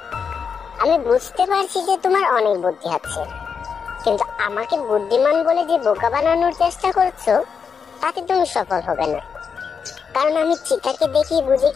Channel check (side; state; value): right; quieter; 6.2 dB